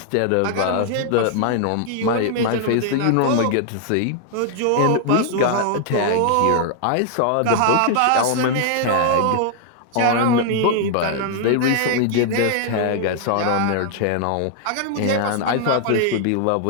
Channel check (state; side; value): different; both; correlation 0.00